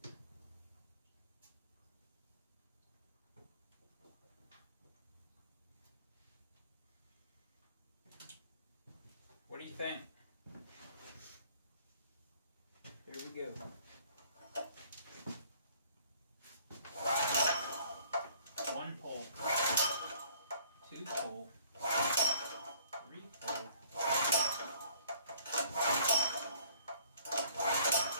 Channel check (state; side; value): inverted; both; correlation -0.56